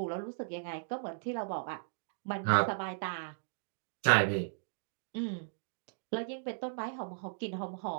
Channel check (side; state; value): left; silent; digital silence